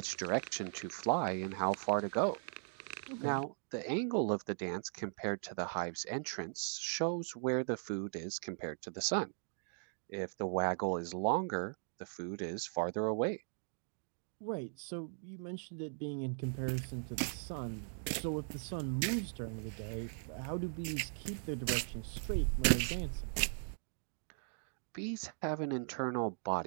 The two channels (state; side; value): silent; left; digital silence